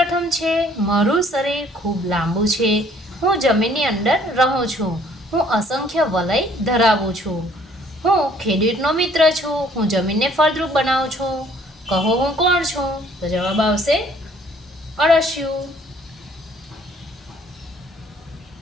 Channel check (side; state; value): both; normal; correlation 0.60